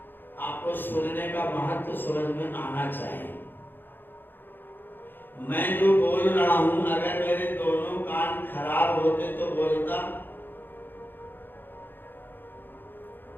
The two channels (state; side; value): late; right; 0.095 ms